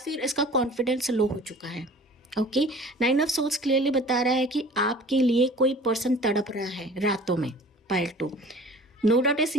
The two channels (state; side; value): normal; both; correlation 0.45